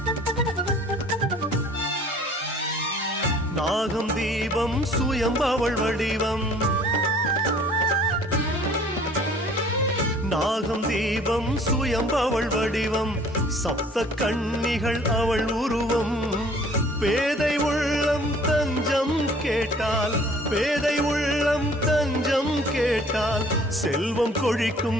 நாகம் தீபம் சுயம்பவள் வடிவம், நாகம் தீபம் சுயம்பவள் வடிவம், சப்த கன்னிகள் அவள் உருவம். பேதை உள்ளம் தஞ்சம் கேட்டால், பேதை உள்ளம் தஞ்சம் கேட்டால் செல்வம்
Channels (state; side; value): normal; both; correlation 0.53